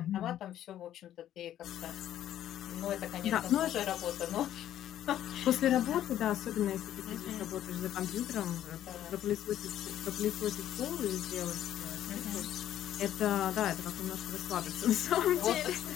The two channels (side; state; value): right; quieter; 11.7 dB